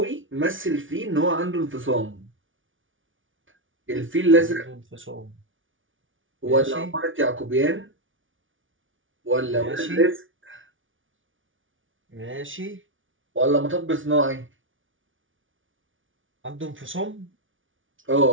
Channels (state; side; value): late; left; 0.57 ms